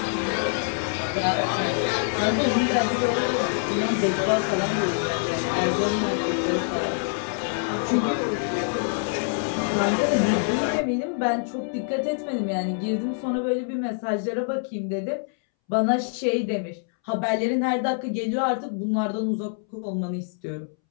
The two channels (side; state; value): right; silent; 62 dB below the other